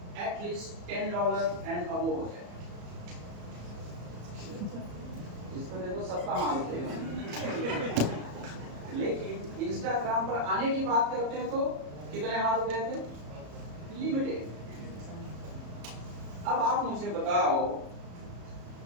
एटलीस्ट $10 एंड अबव हो जाए? इसमें देखो सबका हाल उठेगा। लेकिन इंस्टाग्राम पर आने की बात करते हैं तो कितने हाथ उठे थे? लिमिटेड। अब आप मुझे बताओ,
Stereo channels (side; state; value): left; late; 34 ms